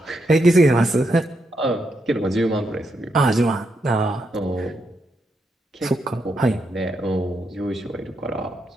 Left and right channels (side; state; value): both; normal; correlation 0.81